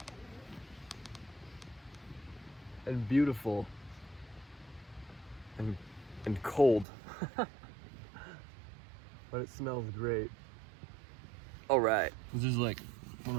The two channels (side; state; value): left; drops out; at 6.9 s